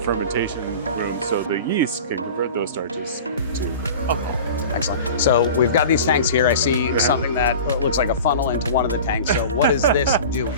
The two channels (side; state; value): both; inverted; correlation -0.37